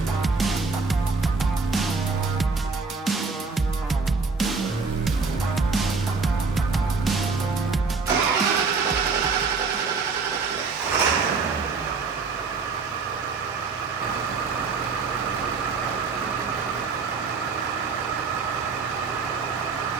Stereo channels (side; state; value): left; quieter; 4.6 dB